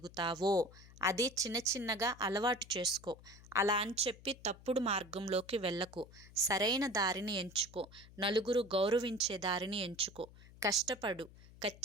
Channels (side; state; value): left; noise; hum, 21 dB below the sound